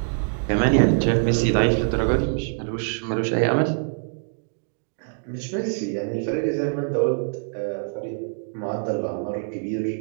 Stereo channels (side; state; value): left; silent; digital silence